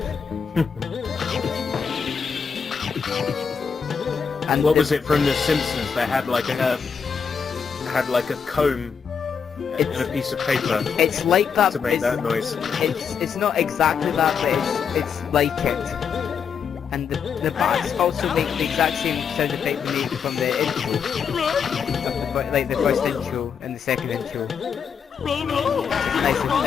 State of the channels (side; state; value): right; quieter; 6.6 dB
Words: And what was it from The Simpsons? They had like a comb and a piece of paper. It's like that to make that noise. It's not exactly that, but it's like it. And the bats also make the exact same sound effect they make from the intro, like the first intro and the second intro. Nice.